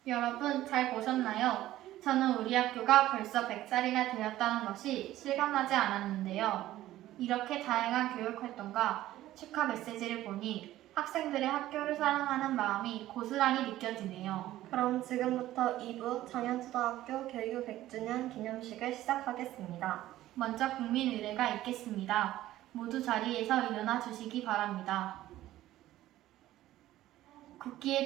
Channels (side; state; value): left; quieter; 14.6 dB